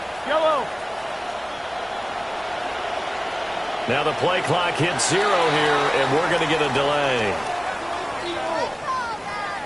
Yellow. Now the play clock hits 0 here, and we're going to get a delay.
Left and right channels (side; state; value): both; identical; correlation 1.00